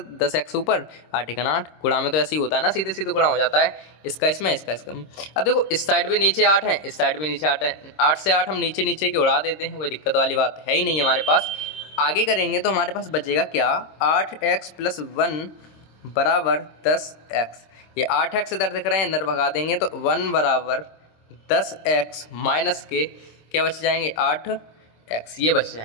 10x ऊपर 8 एकन 8, गुणा में तो ऐसे ही होता है ना, सीधे सीधे गुणा हो जाता है, इसका इसमें इसका इसका। अब देखो इस साइड भी नीचे 8 है, इस साइड भी नीचे 8 है, 8 से 8 हम नीचे नीचे के उड़ा देते हैं, कोई दिक्कत वाली बात है ही नहीं हमारे पास। आगे करेंगे तो हमारे पास बचेगा क्या, 8x प्लस 1 बराबर 10x। ये 8x इधर दिख रहे हैं, अंदर भगा देंगे तो 1 बराबर 10x माइनस के क्या बच जाएंगे 8x, ये बच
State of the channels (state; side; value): late; right; 26 ms